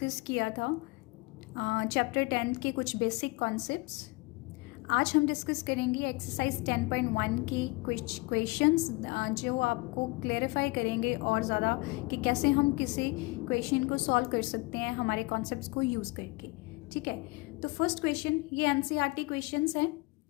किया था चैप्टर 10 के कुछ बेसिक कॉन्सेप्ट्स। आज हम डिस्कस करेंगे एक्सरसाइज 10.1 के कुछ क्वेश्चंस जो आपको क्लेरिफाई करेंगे और ज़्यादा कि कैसे हम किसी क्वेश्चन को सॉल्व कर सकते हैं हमारे कॉन्सेप्ट्स को यूज़ करके। ठीक है, तो फर्स्ट क्वेश्चन ये एनसीईआरटी क्वेश्चंस हैं,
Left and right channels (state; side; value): quieter; right; 25.1 dB